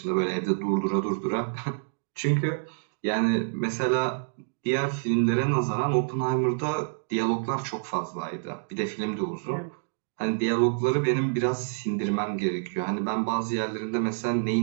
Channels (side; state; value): left; silent; digital silence